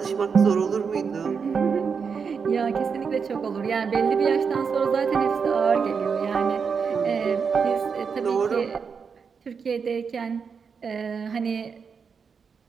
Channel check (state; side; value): quieter; left; 5.9 dB